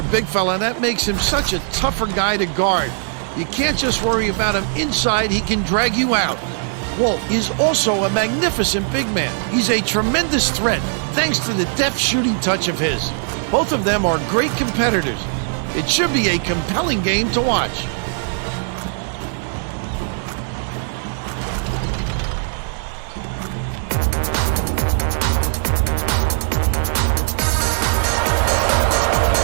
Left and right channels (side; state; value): left; silent; 66 dB below the other